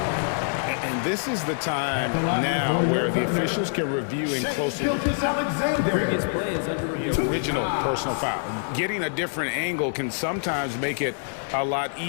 And this is the time now where the officials can review and closely the original personal foul. Getting a different angle can sometimes make it a lot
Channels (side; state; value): right; silent; digital silence